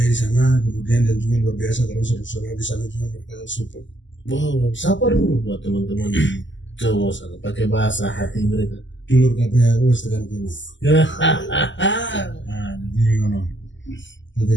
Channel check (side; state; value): right; late; 0.54 ms